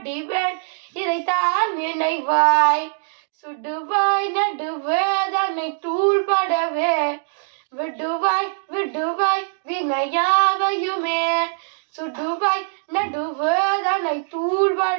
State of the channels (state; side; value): silent; left; digital silence